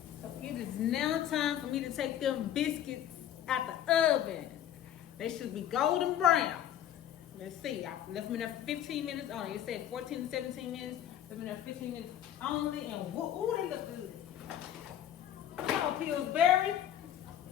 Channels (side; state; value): right; quieter; 11.0 dB